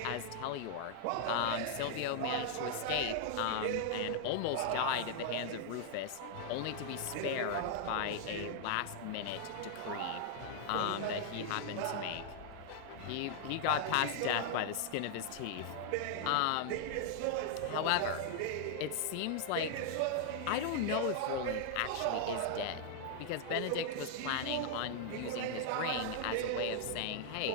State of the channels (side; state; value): both; different; correlation -0.01